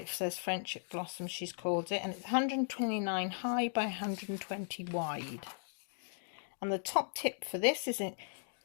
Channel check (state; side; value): silent; right; digital silence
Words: says Friendship Blossom, she's called it, and it's 129 high by 120 wide. And the top tip for this is